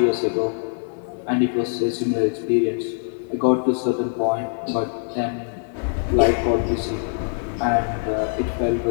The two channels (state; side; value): silent; right; digital silence